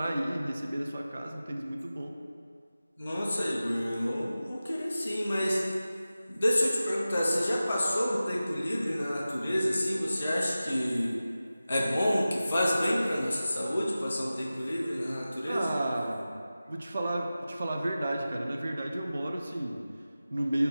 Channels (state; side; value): inverted; both; correlation -0.95